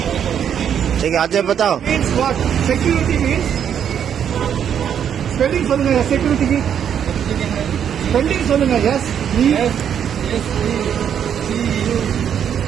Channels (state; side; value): quieter; left; 8.7 dB